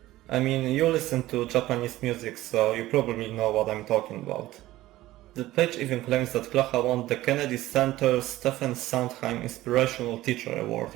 I mean, you listen to Japanese music, so you probably know what I'm talking about. The page even claims that Klaha won the Kennedy Center Stephen Sondheim Inspirational Teacher Award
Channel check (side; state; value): left; quieter; 16.2 dB